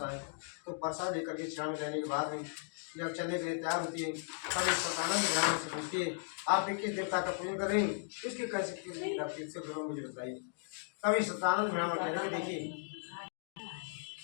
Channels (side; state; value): right; silent; digital silence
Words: है तो प्रसाद लेकर के क्षण में लेने के बाद में जब चलने के लिए तैयार होती है तब इस सतानंद ब्राह्मण से पूछती है आप किस देवता का पूजन कर रहे हैं इसके कैसे मुझे बताइए तभी सतानंद ब्राह्मण कहने में देखिए